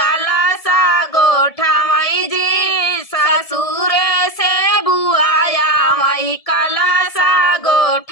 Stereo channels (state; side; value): late; right; 1.7 ms